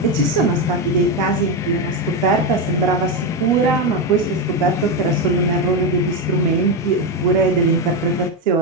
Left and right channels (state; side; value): normal; both; correlation 0.10